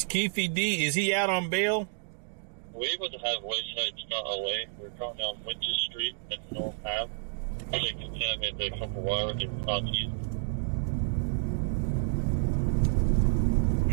Keefe D, is he out on bail? We're able to have Wayside Scott away. We're going down Winter Street and North Ave. They contaminate the couple wire and southeast.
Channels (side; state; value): left; silent; digital silence